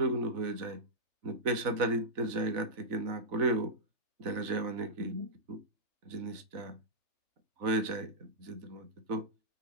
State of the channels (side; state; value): left; late; 3.4 ms